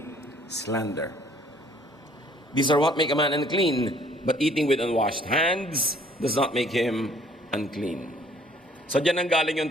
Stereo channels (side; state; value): both; normal; correlation 0.58